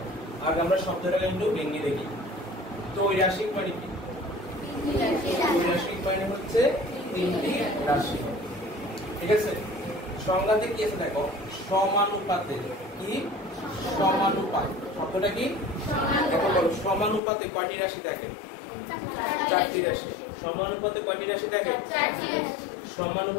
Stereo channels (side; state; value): right; drops out; at 17.2 s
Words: আগে আমরা শব্দটাকে একটু ভেঙে দেখি। ত্রৈরাশিক মানে কি? ত্রৈরাশিক মানে হচ্ছে তিনটি রাশি। ঠিক আছে, সংজ্ঞাতে কি আছে দেখো, সমানুপাতে। কি সমানুপাত? শব্দটা কি? এখন বলো সমানুপাতে কয়টি রাশি থাকে? 4টি রাশি। সমানুপাতে কয়টি রাশি থাকে?